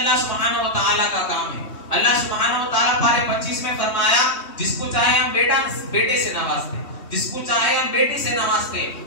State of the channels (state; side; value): late; right; 3.2 ms